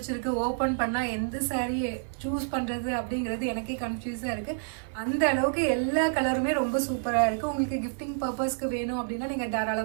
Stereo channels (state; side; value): silent; left; digital silence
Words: ஓப்பன் பண்ணால் எந்த saree சூஸ் பண்ணுறது அப்படிங்கிறது எனக்கே கன்ஃபியூஸாக இருக்குது. அந்த அளவுக்கு எல்லா கலருமே ரொம்ப சூப்பராக இருக்குது. உங்களுக்கு கிஃப்டிங் பர்பஸ்க்கு வேணும் அப்படின்னா நீங்கள்